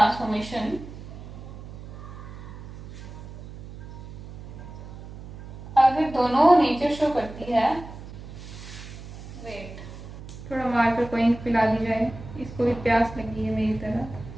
अगर दोनों नेचर शो करती है, वेट थोड़ा मार्कर कोइन पिला दी जाए, इसको भी प्यास लगी है मेरी तरह।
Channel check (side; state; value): right; noise; hum, 13 dB below the sound